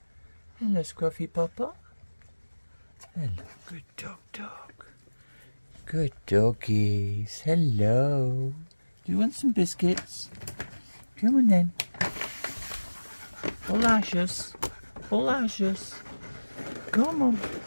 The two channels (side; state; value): both; inverted; correlation -1.00